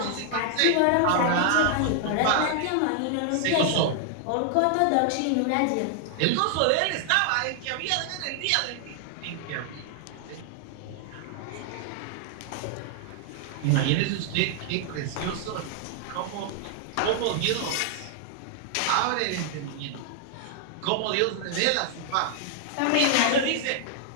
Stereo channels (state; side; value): different; both; correlation 0.00